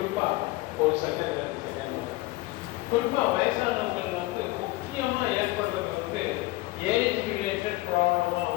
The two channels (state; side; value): quieter; right; 19.8 dB